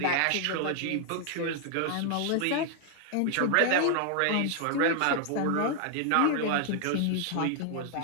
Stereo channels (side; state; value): both; different; correlation 0.00